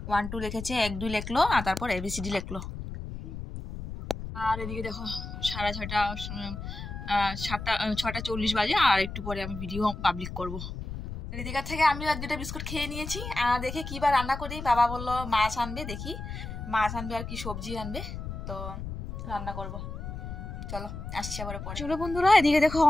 1 2 লিখেছে, 1 2 লিখলো, আর তারপর ABCD লিখলো। আর এদিকে দেখো 6:30 6:40 বাজে, আর একটু পরে আমি ভিডিও পাবলিক করবো। ঋতিকার থেকে আমিও 1-2টা বিস্কুট খেয়ে নিয়েছি। দেখে কি বা রান্না করি, বাবা বললো মাছ আনবে, দেখি মাছ আনবে আর কি সবজি আনবে, তো রান্না করব। চলো আসছি আবার পরে। চলো বন্ধুরা এদিকে দেখো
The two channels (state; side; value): noise; left; rumble, 8 dB below the sound